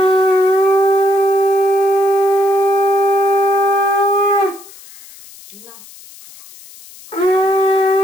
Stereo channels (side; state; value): left; noise; hiss, 21 dB below the sound